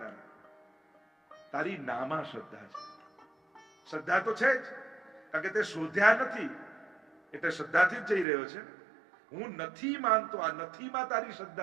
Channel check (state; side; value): drops out; left; at 8.2 s